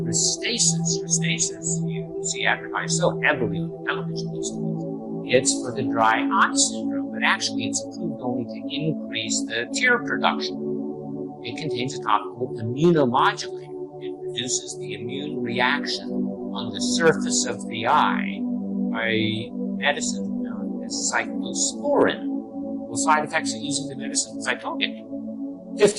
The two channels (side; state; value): both; identical; correlation 1.00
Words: Restasis, you see advertised so heavily on the television these days. It's for the dry eye syndrome, but actually it's approved only to increase the tear production. It contains a topical immunomodulator. It reduces the immune reaction on the surface of the eye by medicine known as cyclosporin. Well, side effects of using the medicine, as I told you,